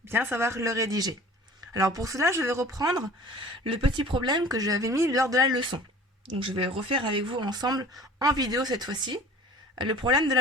bien savoir le rédiger. Alors pour cela, je vais reprendre le petit problème que j'avais mis lors de la leçon. Donc je vais refaire avec vous ensemble en vidéo cette fois-ci le problème de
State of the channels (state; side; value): normal; both; correlation 0.45